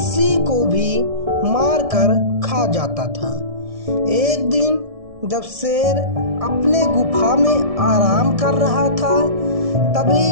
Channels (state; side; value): late; left; 1.7 ms